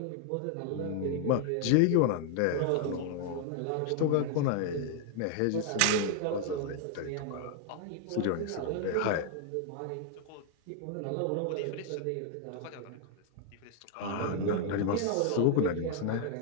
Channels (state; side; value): different; both; correlation 0.00